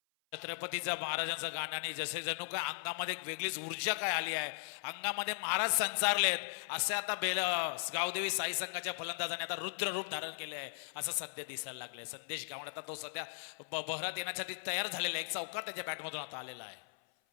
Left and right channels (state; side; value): silent; right; 53 dB below the other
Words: छत्रपतीचा महाराजांचं गाण्याने जसे जणू काय अंगामध्ये एक वेगळीच ऊर्जा काय आली आहे, अंगामध्ये महाराज संचारलेत असे आता गावदेवी साई संघाच्या फलंदाजाने आता रुद्र रूप धारण केले आहे असं सध्या दिसायला लागले. संदेश गावण आता तो सध्या बहरात येण्यासाठी तयार झालेला आहे. एक चौकार त्याच्या बॅटमधून आता आलेला आहे.